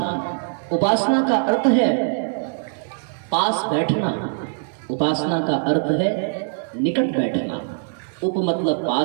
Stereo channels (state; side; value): silent; left; digital silence